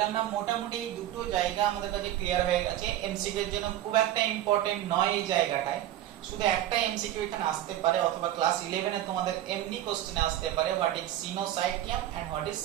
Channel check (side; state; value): left; quieter; 12.8 dB